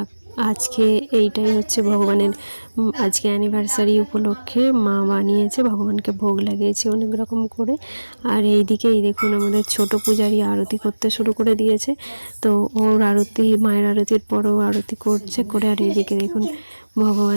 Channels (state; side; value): inverted; both; correlation -1.00